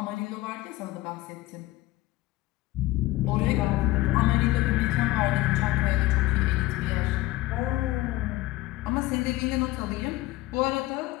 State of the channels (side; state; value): right; quieter; 17.8 dB